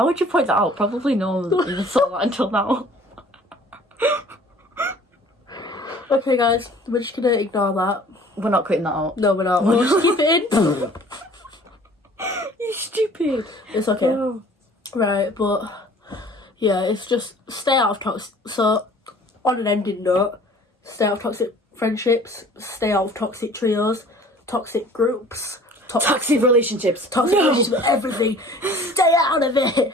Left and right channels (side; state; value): both; normal; correlation 0.50